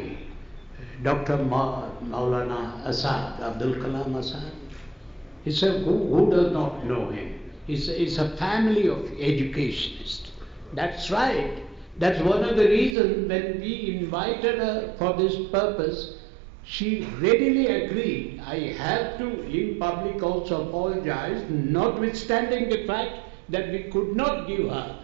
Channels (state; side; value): drops out; left; at 13.0 s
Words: Dr. Maulana Azad, Abdul Kalam Azad. Who does not know him? It's a family of educationists. That's right. That's one of the reasons when we invited her for this purpose, she readily agreed. I have to, in public, also apologize, notwithstanding the fact that we could not give her